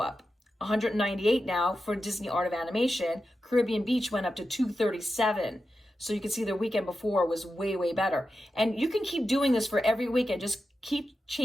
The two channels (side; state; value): both; normal; correlation 0.90